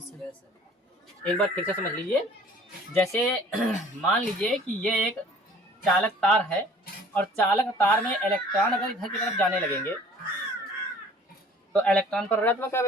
एक बार फिर से समझ लीजिए। जैसे मान लीजिए कि ये एक चालक तार है और चालक तार में इलेक्ट्रॉन अगर इधर की तरफ जाने लगेंगे तो इलेक्ट्रॉन पर ऋणात्मक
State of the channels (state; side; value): normal; both; correlation 0.51